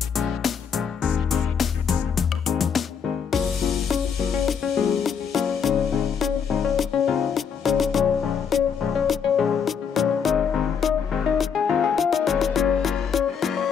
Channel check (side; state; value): right; quieter; 6.9 dB